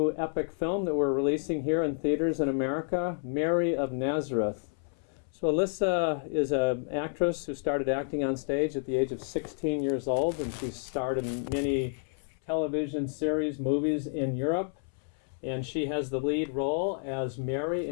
epic film that we're releasing here in theaters in America, Mary of Nazareth. So Alissa is an actress who started acting on stage at the age of 16 years old, and she's starred in many television series, movies in Europe. And she has the lead role as Mary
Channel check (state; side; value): silent; right; 58 dB below the other